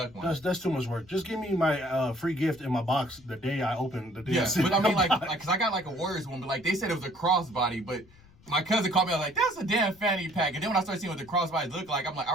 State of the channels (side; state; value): left; noise; rumble, 27 dB below the sound